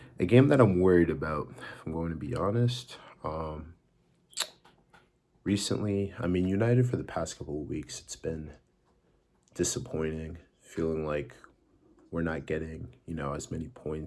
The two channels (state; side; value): identical; both; correlation 1.00